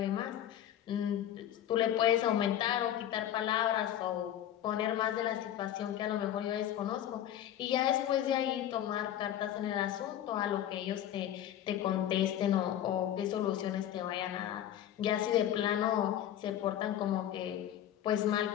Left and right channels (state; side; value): quieter; right; 11.3 dB